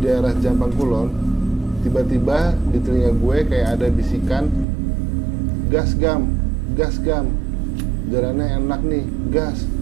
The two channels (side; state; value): left; drops out; at 4.7 s